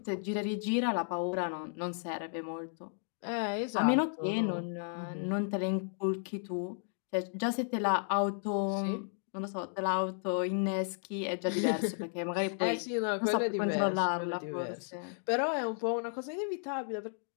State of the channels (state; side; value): silent; right; digital silence